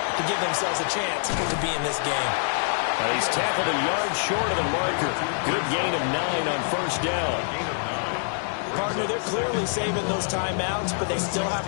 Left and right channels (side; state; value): right; silent; digital silence